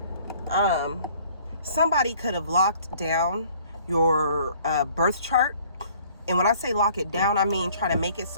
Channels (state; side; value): inverted; both; correlation -0.56